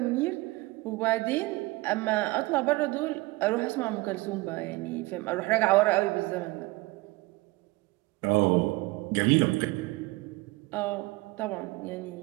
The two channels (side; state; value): left; quieter; 21.7 dB